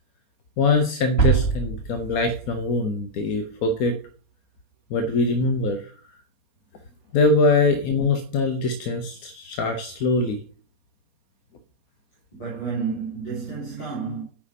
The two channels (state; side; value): late; right; 4.2 ms